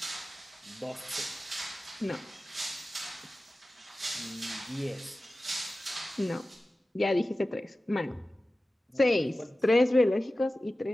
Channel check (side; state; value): both; normal; correlation 0.95